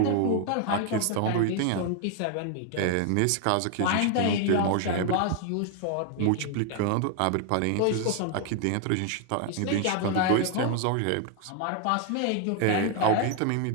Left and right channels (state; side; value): different; both; correlation 0.00